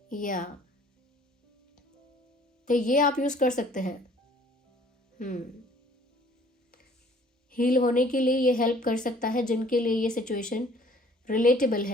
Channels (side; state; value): both; normal; correlation 0.55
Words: या तो ये आप यूज़ कर सकते हैं। हील होने के लिए ये हेल्प कर सकता है जिनके लिए ये सिचुएशन रिलेटेबल